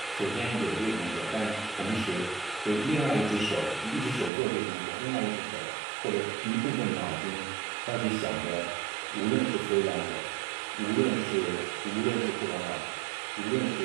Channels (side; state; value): left; drops out; at 4.3 s